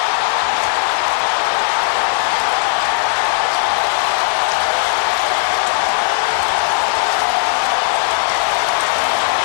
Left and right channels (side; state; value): right; silent; digital silence